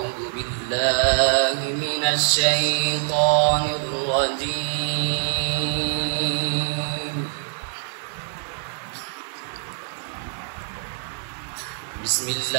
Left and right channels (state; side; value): silent; left; digital silence